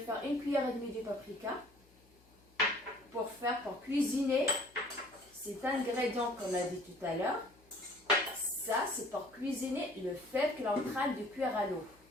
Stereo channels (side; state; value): left; noise; hum, 29 dB below the sound